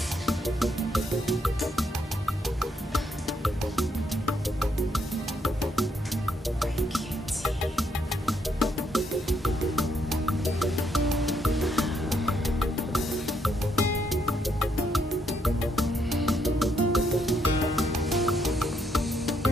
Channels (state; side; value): normal; both; correlation 0.75